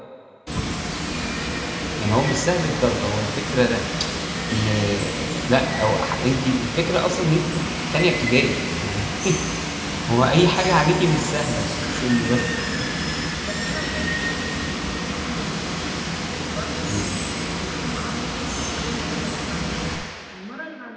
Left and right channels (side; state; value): both; identical; correlation 1.00